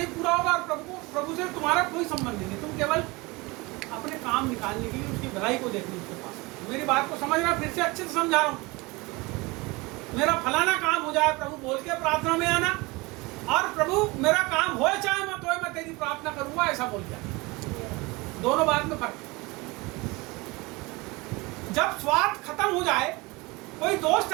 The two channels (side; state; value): left; quieter; 24.2 dB